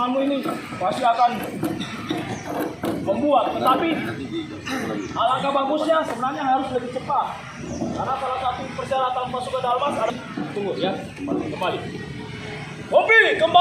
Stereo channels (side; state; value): both; identical; correlation 1.00